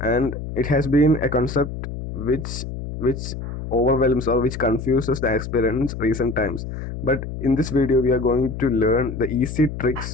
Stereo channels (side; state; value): left; noise; hum, 7 dB below the sound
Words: it has been a concept which overwhelms or which confuses the aspirants recent times. But in this video, we are going to learn the easy